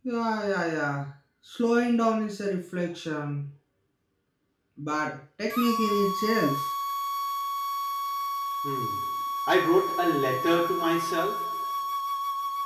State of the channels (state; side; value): identical; both; correlation 1.00